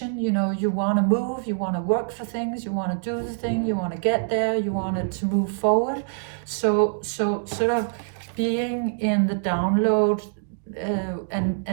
You know, you want to move, you want to work for things, you want to do the thing, you want to get there, you want it to move forward. So sort of being in the download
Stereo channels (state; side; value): silent; left; digital silence